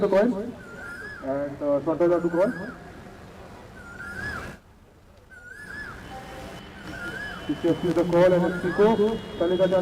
the coin and Swata to call. Cc&Fc is the call and it's Pico. Lagan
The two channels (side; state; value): both; identical; correlation 1.00